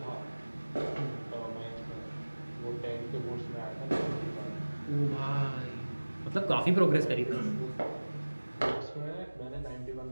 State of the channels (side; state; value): both; inverted; correlation -1.00